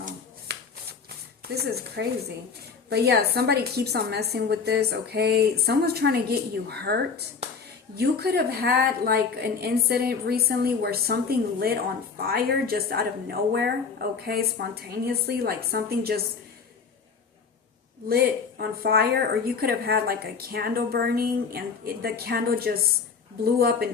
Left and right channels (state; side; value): quieter; right; 5.5 dB